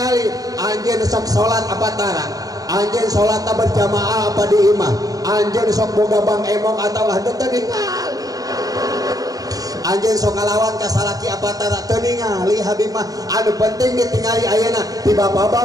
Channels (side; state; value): left; late; 0.18 ms